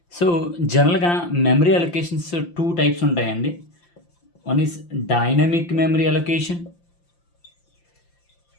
So జనరల్గా memory allocations two types ఉంటాయండి. One is dynamic memory allocation,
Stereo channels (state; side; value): late; right; 5.8 ms